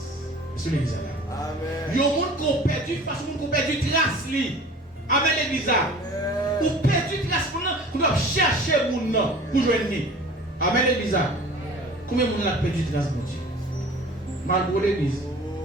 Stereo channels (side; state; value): both; normal; correlation 0.44